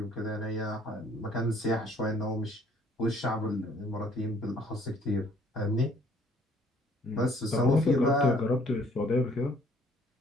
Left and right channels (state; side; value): normal; both; correlation 0.60